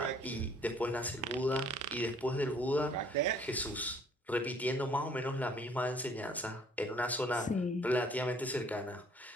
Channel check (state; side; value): normal; both; correlation 0.58